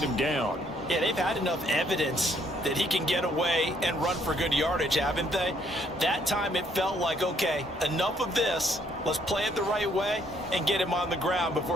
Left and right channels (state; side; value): normal; both; correlation 0.68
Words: him down. Yeah, they've had enough evidence that he can get away and run for good yardage, haven't they? That time it felt like, okay, enough of this. Let's play it the right way and get him on the ground